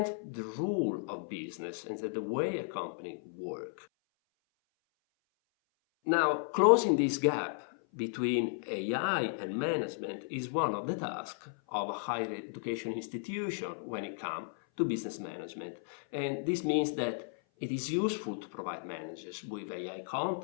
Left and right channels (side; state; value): right; silent; 55 dB below the other